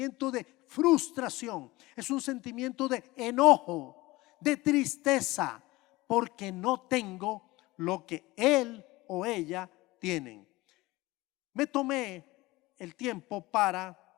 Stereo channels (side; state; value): right; quieter; 20.3 dB